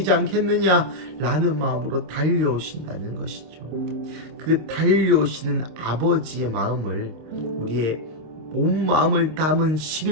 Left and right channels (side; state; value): left; late; 26 ms